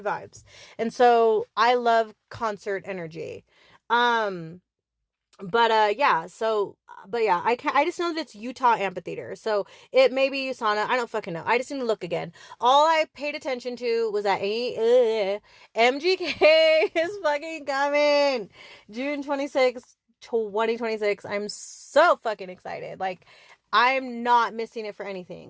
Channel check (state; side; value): identical; both; correlation 1.00